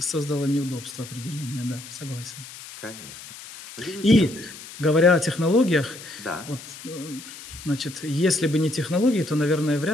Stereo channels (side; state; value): left; noise; hiss, 15 dB below the sound